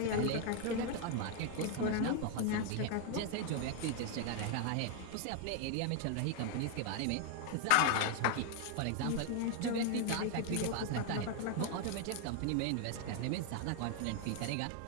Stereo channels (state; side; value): different; both; correlation 0.00